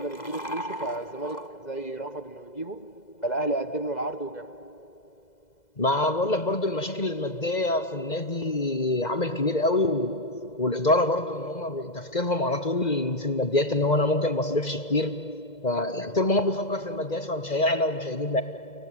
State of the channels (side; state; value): right; late; 2.0 ms